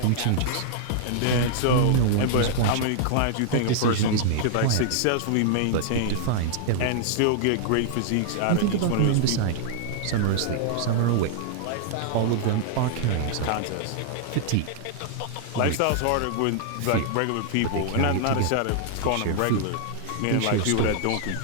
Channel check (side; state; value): both; different; correlation -0.01